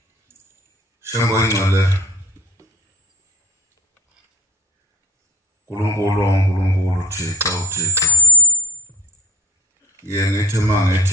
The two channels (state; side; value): normal; both; correlation 0.49